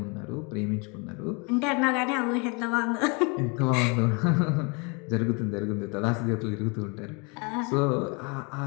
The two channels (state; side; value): quieter; right; 31.7 dB